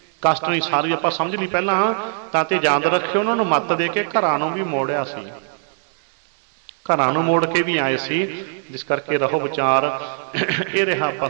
ਕਸ਼ਟ ਨਹੀਂ ਸਾਰੀ ਆਪਾਂ ਸਮਝ ਲਈ ਪਹਿਲਾਂ। ਤਾਂ ਤੇ ਯਾਦ ਰੱਖਿਓ, ਉਹਨਾਂ ਨੂੰ ਮੱਤ ਦੇ ਕੇ ਘਰਾਂ ਨੂੰ ਵੀ ਮੋੜਿਆ ਸੀ, ਘਰਾਂ ਨੂੰ ਮੋੜ ਕੇ ਵੀ ਆਏ ਸੀ। ਜਿਸ ਕਰਕੇ ਰਹੋ ਵਿਚਾਰ। ਇਹ ਰਿਹਾ ਆਪਾਂ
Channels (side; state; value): left; silent; digital silence